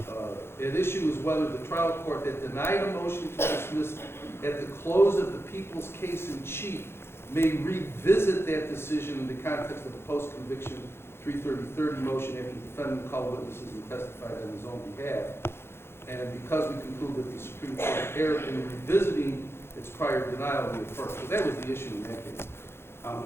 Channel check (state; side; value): late; right; 0.12 ms